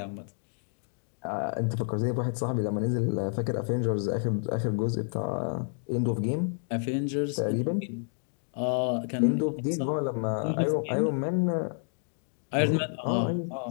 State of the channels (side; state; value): right; silent; 58 dB below the other